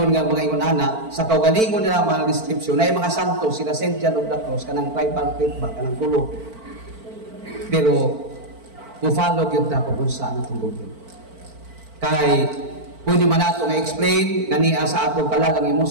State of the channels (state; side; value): late; left; 4.5 ms